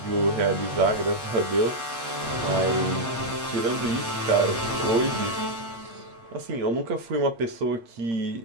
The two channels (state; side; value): late; left; 8.4 ms